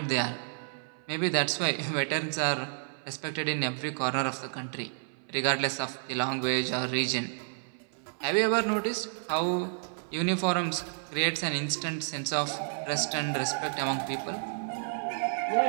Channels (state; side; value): silent; left; 56 dB below the other